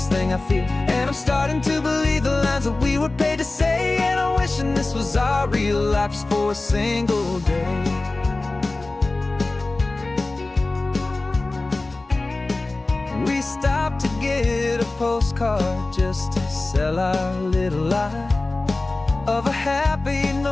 thing I feel, and I'm starting to believe the lines that we were paid to say. And I'm wishing this was our real life just for a single day. We stopped to get a postcard just to sell our little lie of a happy,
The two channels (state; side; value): quieter; right; 3.1 dB